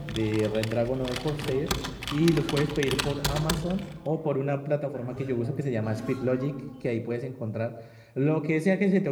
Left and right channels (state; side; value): identical; both; correlation 1.00